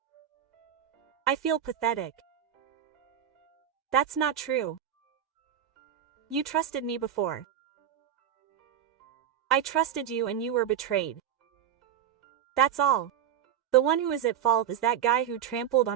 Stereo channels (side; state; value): left; quieter; 10.0 dB